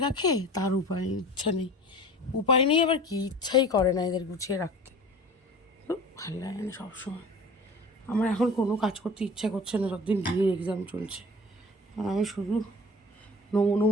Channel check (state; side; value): normal; both; correlation 0.40